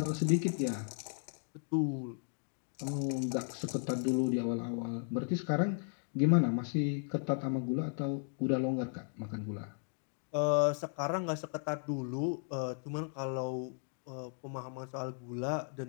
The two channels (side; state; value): right; silent; 54 dB below the other